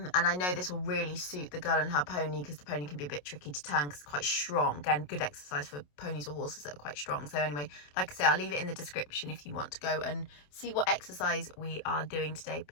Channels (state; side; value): late; right; 27 ms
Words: I know this will really suit the girl and her pony, because the pony can be a bit tricky to turn because it's quite strong. Again, good exercise for ponies or horses that are quite strong. So anyway, like I say, I'll leave it in the description if you want to go and see what exercise we are doing today.